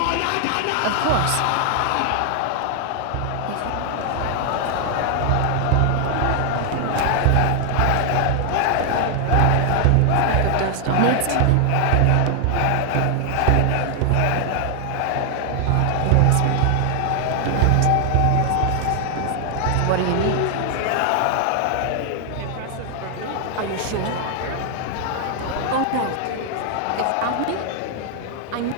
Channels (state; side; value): different; both; correlation 0.00